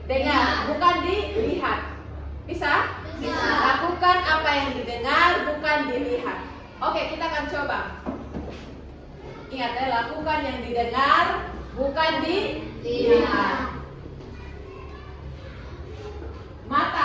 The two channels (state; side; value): identical; both; correlation 1.00